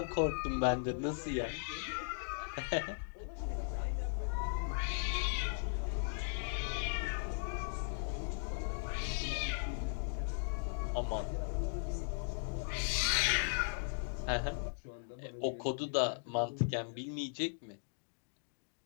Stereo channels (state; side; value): silent; right; digital silence